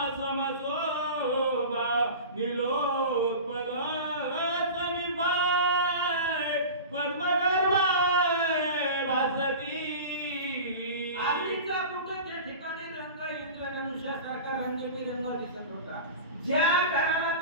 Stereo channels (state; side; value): inverted; both; correlation -0.33